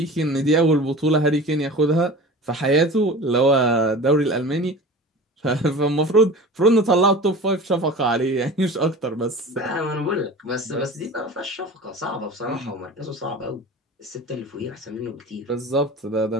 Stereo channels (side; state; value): both; normal; correlation 0.37